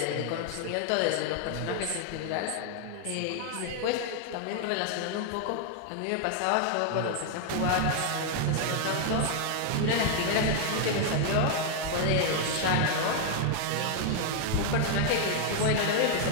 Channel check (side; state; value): both; different; correlation 0.00